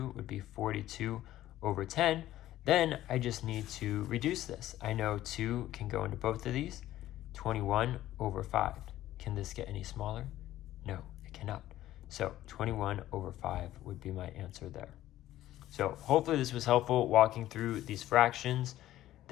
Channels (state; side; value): quieter; right; 14.0 dB